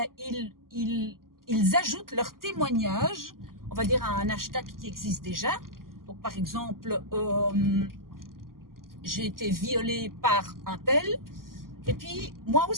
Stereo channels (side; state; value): left; late; 0.92 ms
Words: ils ajoutent leur témoignage, on va dire à un hashtag qui existe déjà. Donc, par exemple, j'ai été violée par un tel, et puis moi